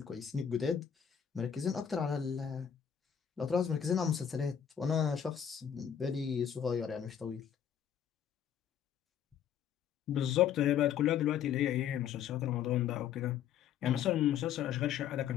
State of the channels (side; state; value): right; quieter; 8.8 dB